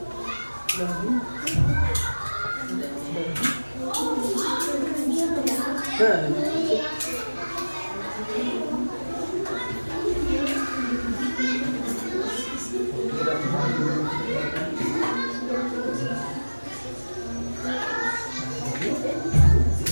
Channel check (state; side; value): inverted; both; correlation -1.00